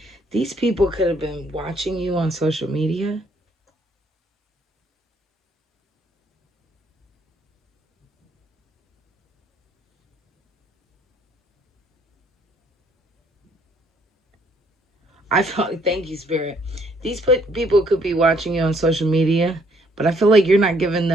These people could have been watching you on social media. I felt, thank you, Spirit. These people could be watching you on social media, but I feel like you're not giving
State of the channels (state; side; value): normal; both; correlation 0.66